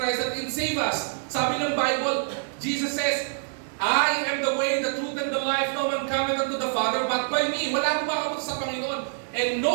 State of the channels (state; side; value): silent; left; digital silence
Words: Christ that can save us. Sabi ng Bible, Jesus says, I am the way, the truth, and the life. No one cometh unto the Father but by me. Wala po makapunta sa Panginoon. And